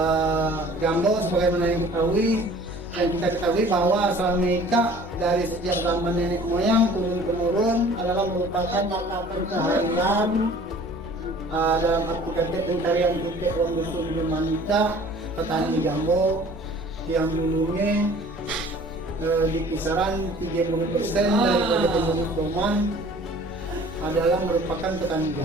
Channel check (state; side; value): normal; both; correlation 0.49